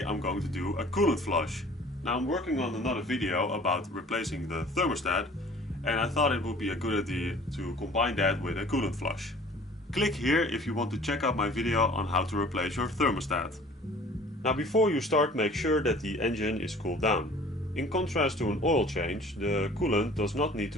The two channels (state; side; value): normal; both; correlation 0.49